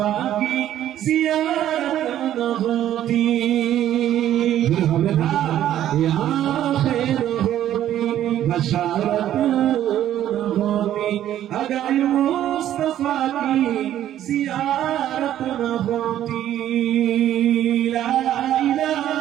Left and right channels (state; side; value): quieter; left; 11.8 dB